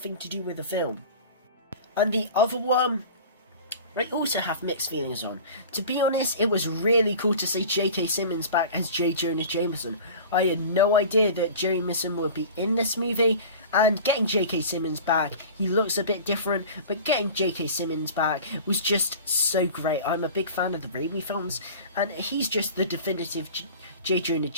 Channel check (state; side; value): inverted; both; correlation -0.38